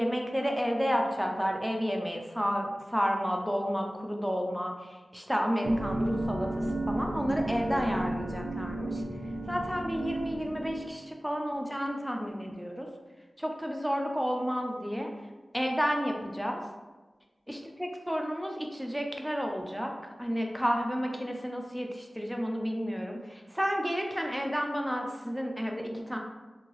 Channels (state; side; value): normal; both; correlation 0.97